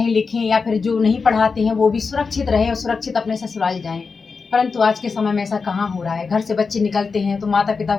लिखें, या फिर जो नहीं पढ़ाते हैं वो भी सुरक्षित रहें और सुरक्षित अपने ससुराल जाएं। परंतु आज के समय में ऐसा कहाँ हो रहा है। घर से बच्चे निकलते हैं तो माता पिता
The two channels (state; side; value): quieter; right; 4.8 dB